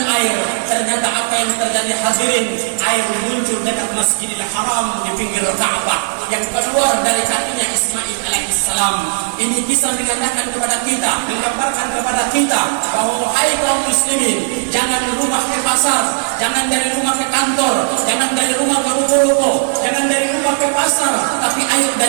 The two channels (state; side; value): silent; left; 60 dB below the other